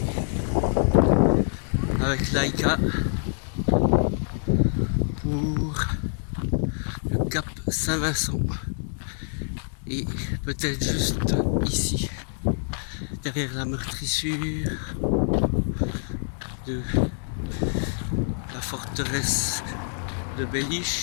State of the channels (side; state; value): right; silent; digital silence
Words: avec Laika pour le Cap Saint-Vincent. Et peut-être juste ici, derrière la meurtrissure de la forteresse de